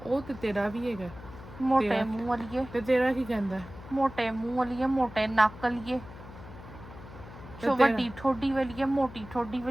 ਉਹ ਤੇ ਤੇਰਾ ਵੀ ਹੈਗਾ। ਮੋਟੇ ਮੂੰਹ ਵਾਲੀਏ, ਤੇ ਤੇਰਾ ਕੀ ਕਹਿੰਦਾ? ਮੋਟੇ ਮੂੰਹ ਵਾਲੀਏ, ਮੋਟੇ ਨੱਕ ਵਾਲੀਏ, ਵੱਡੀ ਠੋਡੀ ਵਾਲੀਏ, ਮੋਟੀ ਠੋਡੀ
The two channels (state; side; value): noise; left; hum, 16 dB below the sound